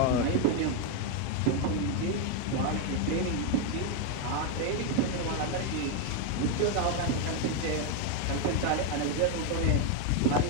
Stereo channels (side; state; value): both; different; correlation 0.02